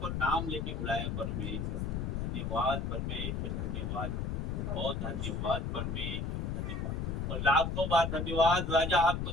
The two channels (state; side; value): noise; left; rumble, 1 dB below the sound